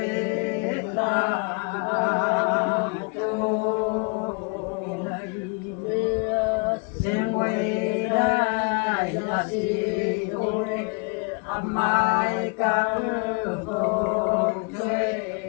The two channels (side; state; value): right; quieter; 32.7 dB